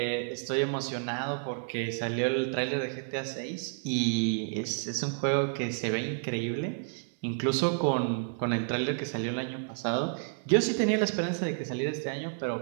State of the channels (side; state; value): left; silent; 58 dB below the other